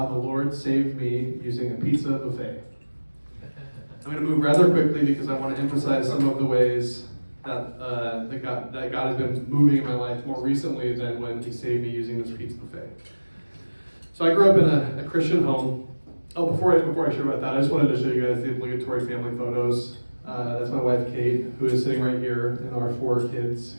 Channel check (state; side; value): inverted; both; correlation -1.00